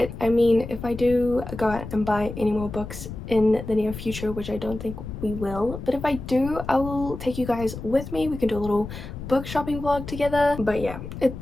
I mean, if I do go out and buy any more books in the near future, which I don't think we will, but if I do, I will take you guys with me. We can do a little book shopping vlog together. But yeah,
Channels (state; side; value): noise; left; rumble, 10 dB below the sound